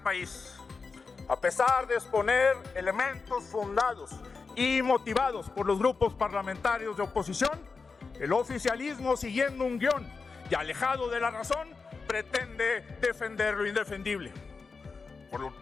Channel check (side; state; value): right; quieter; 4.6 dB